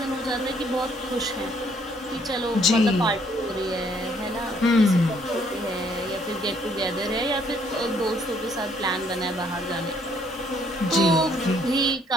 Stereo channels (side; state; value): both; normal; correlation 0.66